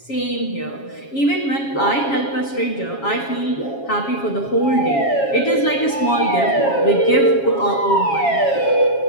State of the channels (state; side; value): late; right; 7.3 ms